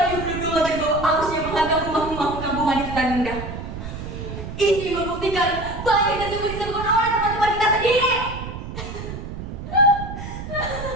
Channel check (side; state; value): right; noise; rumble, 8 dB below the sound